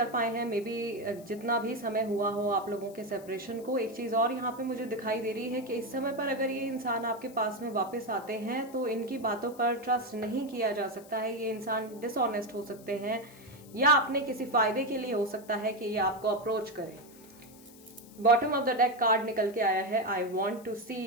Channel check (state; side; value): noise; left; hiss, 23 dB below the sound